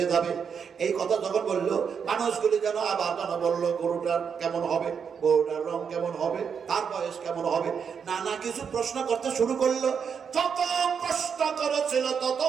যাবে। এই কথা যখন বললো, মানুষগুলি যেন আবার যেন বললো গরুটার কেমন হবে, গরুটার রং কেমন হবে, তার বয়স কেমন হবে, নানা কিছু প্রশ্ন করতে শুরু করলো। যত প্রশ্ন করেছিল তত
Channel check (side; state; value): left; quieter; 6.8 dB